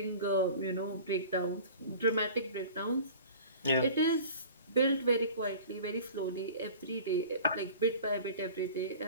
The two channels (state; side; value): inverted; both; correlation -0.42